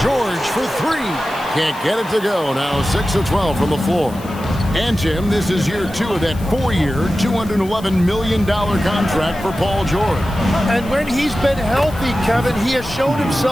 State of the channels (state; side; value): noise; left; hiss, 20 dB below the sound